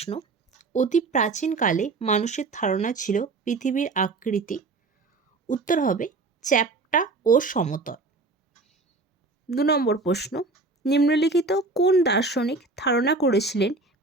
অতি প্রাচীনকালে মানুষের ধারণা ছিল পৃথিবীর আকৃতি। উত্তর হবে চ্যাপ্টা ও সমতল। 2 নম্বর প্রশ্ন, নিম্নলিখিত কোন দার্শনিক ধারণা করেছিলেন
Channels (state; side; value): quieter; left; 3.7 dB